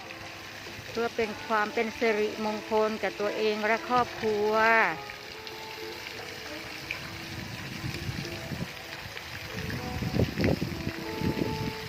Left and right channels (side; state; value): both; identical; correlation 1.00